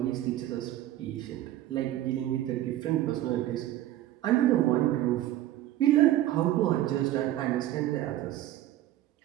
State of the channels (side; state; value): left; quieter; 13.8 dB